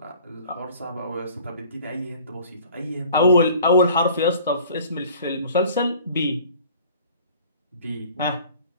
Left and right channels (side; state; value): both; inverted; correlation -0.50